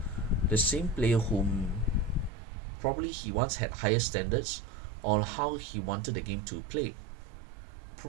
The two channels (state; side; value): drops out; left; at 2.3 s